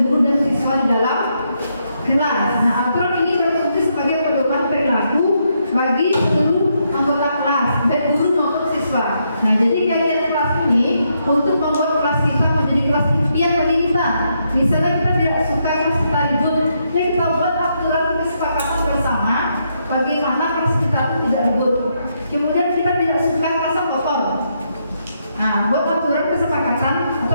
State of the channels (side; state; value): both; inverted; correlation -0.78